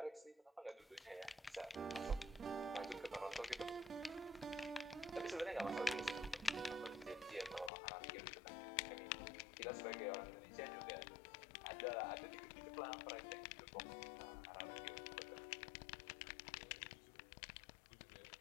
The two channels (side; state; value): right; drops out; at 7.7 s